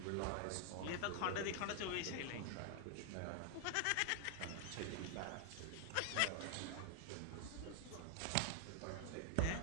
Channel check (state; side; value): different; both; correlation 0.00